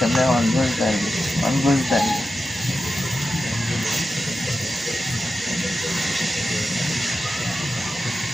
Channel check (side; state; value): both; normal; correlation 0.91